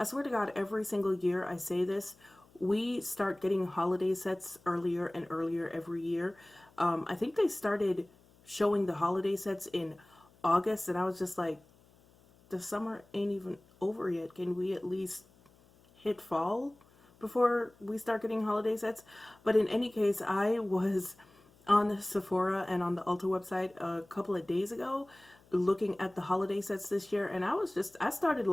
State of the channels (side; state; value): left; noise; hum, 29 dB below the sound